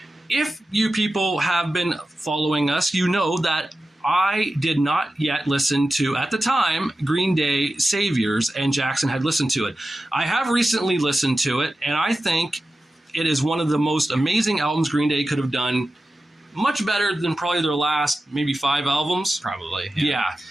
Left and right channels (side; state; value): both; normal; correlation 0.93